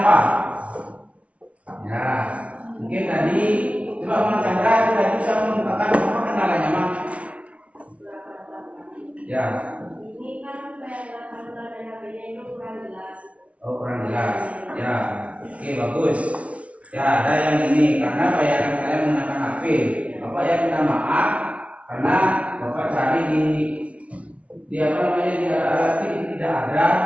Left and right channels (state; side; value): late; left; 0.064 ms